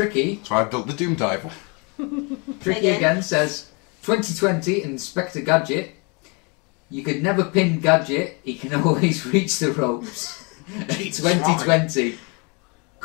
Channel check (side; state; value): right; quieter; 31.5 dB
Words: so I built the Doom Diver. Tricky again says 2020 Inspector Gadget. You could never pin Gadget, he can always reach the ropes. 2020